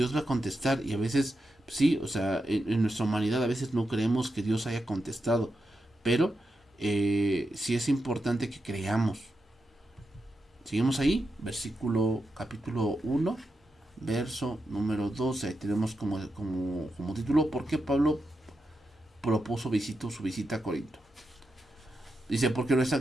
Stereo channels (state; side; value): normal; both; correlation 0.87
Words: va a contestar y a veces sí, o sea, en nuestra humanidad a veces no creemos que Dios haya contestado, pero sí es importante que creamos. Seguimos ahí, capítulo 1, verso número 12. Ahí tenemos como título: ¿por qué Pablo su visita a Corinto? Dice: porque nuestra